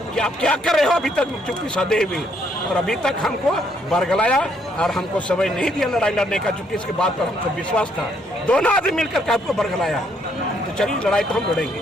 कि आप क्या कर रहे हो, अभी तक चुप्पी साधे हुए, और अभी तक हमको बरगलाया और हमको समय नहीं दिया लड़ाई लड़ने का, चूंकि इसके बाद पर हमको विश्वास था। दोनों आदमी मिलकर के आपको बरगलाया, तो चलिए लड़ाई तो हम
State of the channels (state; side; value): normal; both; correlation 0.70